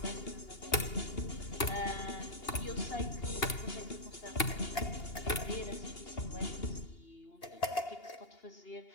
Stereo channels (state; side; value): late; right; 2.8 ms